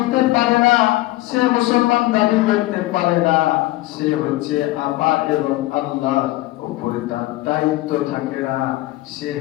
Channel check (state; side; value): quieter; right; 18.3 dB